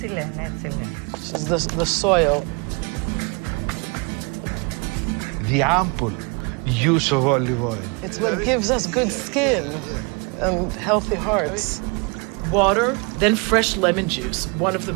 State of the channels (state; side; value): quieter; left; 31.0 dB